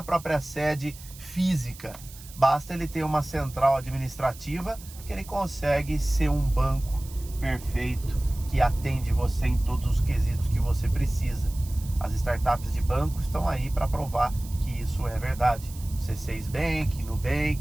própria sede física. Basta ele ter uma central administrativa que ele consegue ser um banco perfeito que atende você em todos os quesitos que você precisa. As startups de banco estão aí para provar que isso é verdade. C6 Bank,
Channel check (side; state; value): right; noise; hiss, 18 dB below the sound